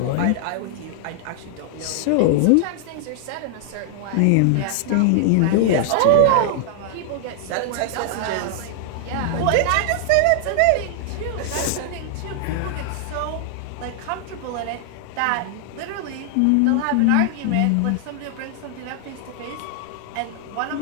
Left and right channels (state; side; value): different; both; correlation 0.00